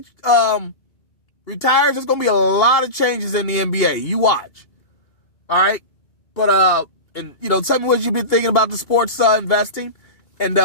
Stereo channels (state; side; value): late; right; 2.8 ms